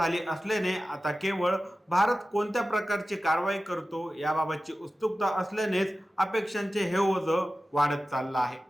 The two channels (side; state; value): both; normal; correlation 0.95